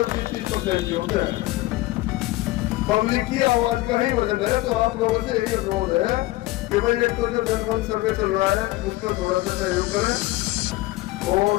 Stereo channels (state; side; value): quieter; right; 18.7 dB